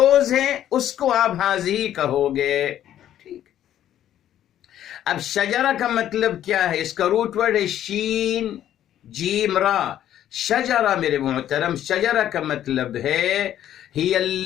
ہیں اس کو آپ ہذہ کہو گے. ٹھیک. اب شجرہ کا مطلب کیا ہے؟ اس کا روٹ ورڈ ہے شین جیم را. شجرہ میرے محترم، شجرہ کا مطلب ہے ہی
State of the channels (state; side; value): quieter; right; 11.4 dB